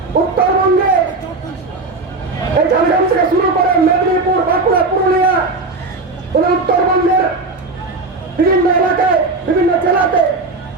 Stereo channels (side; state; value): left; quieter; 3.5 dB